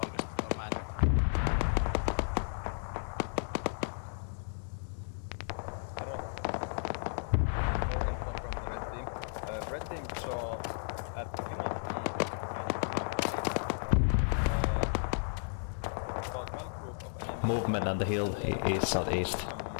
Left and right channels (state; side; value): silent; right; digital silence